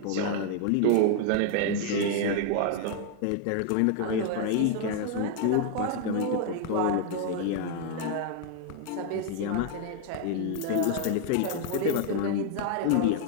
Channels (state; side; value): different; both; correlation 0.00